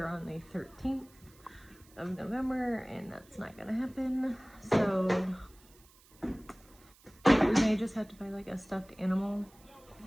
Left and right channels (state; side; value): noise; right; hiss, 27 dB below the sound